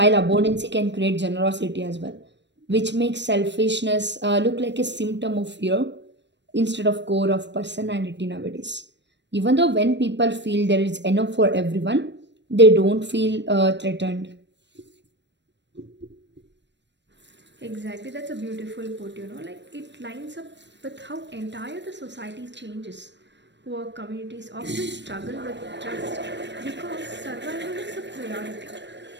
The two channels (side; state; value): left; late; 0.52 ms